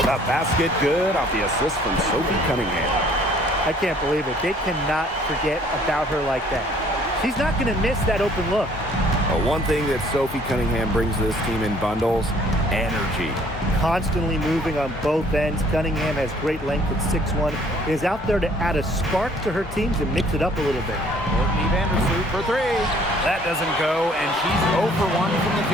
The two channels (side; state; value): both; normal; correlation 0.58